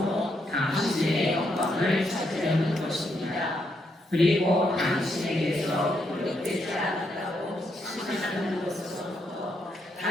당신의 영광을 찾으려는 것입니다. 그리고 당신에게서 거룩되지 않았다고 생각하는 것으로부터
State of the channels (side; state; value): both; normal; correlation 0.78